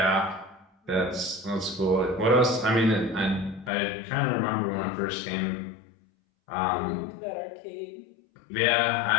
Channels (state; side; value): drops out; right; at 3.7 s